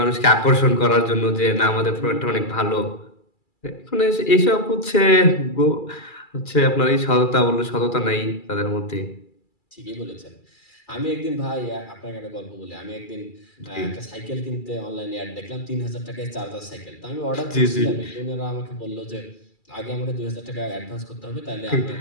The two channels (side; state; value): right; late; 2.3 ms